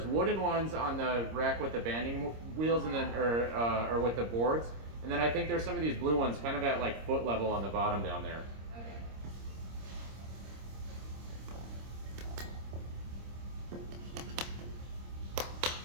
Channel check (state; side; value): late; left; 26 ms